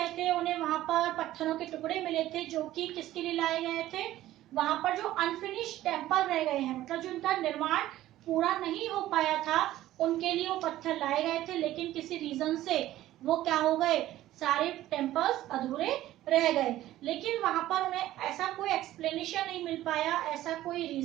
थे उन्हें वहां पर पत्थरों के टुकड़े मिले थे जो कि किसके लिए लाए गए थे, वहां पर जो अनफिनिश्ड टेम्पल रह गए हैं, मतलब जो उनका निर्माण पूरा नहीं हो पाया था, उनके लिए वो पत्थर लाए गए थे। लेकिन किसी रीजन से वो क्या हो गए, सारे टेम्पल्स अधूरे रह गए। लेकिन वहां पर उन्हें ऐसा कोई एक्सप्लेनेशन नहीं मिल पाया, ऐसा कोई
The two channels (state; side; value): quieter; left; 14.5 dB